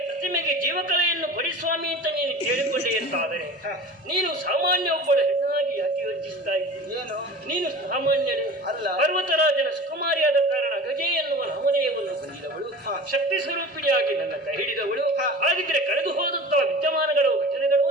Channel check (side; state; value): both; normal; correlation 0.37